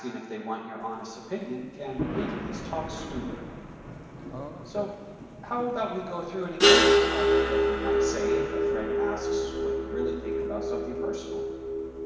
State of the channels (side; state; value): both; identical; correlation 1.00